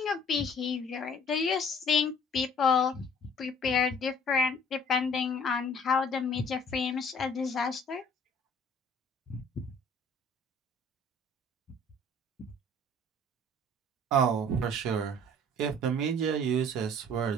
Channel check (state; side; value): normal; both; correlation 0.53